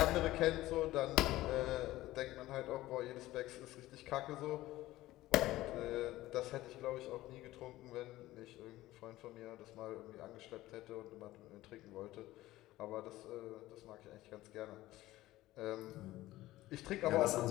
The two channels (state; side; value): quieter; right; 16.5 dB